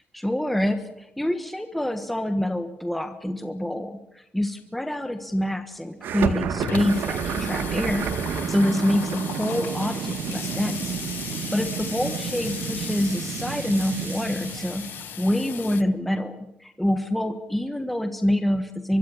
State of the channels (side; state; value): both; normal; correlation 0.86